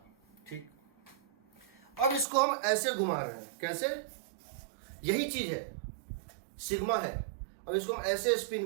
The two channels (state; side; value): drops out; left; at 2.2 s